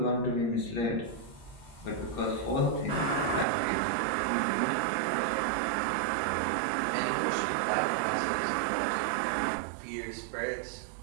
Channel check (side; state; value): left; drops out; at 3.5 s